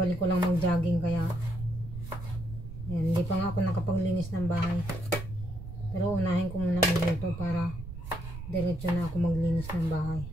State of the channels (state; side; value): noise; right; rumble, 10 dB below the sound